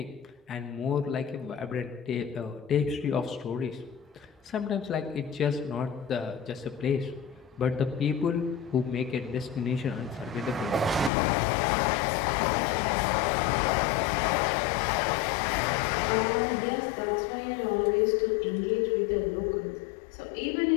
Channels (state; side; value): drops out; right; at 11.1 s